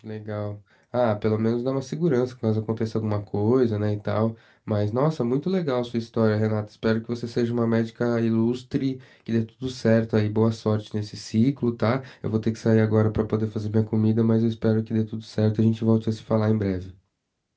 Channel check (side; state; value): both; identical; correlation 1.00